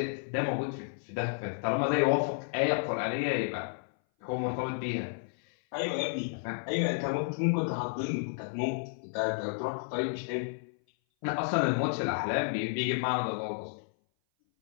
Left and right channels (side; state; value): right; silent; 57 dB below the other